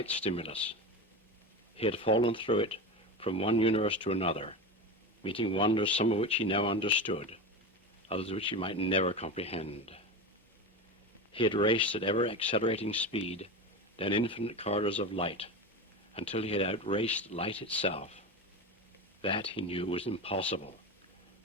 stimulus. He had fallen through it from one universe to another, meeting wonders some of which he now understood, others which he might never comprehend. He had raced at ever-accelerating speed down infinite corridors of light until he had outraced light itself. That, he knew, was impossible,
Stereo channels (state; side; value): normal; both; correlation 0.23